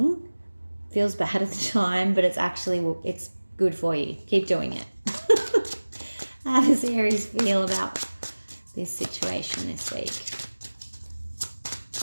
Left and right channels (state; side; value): inverted; both; correlation -1.00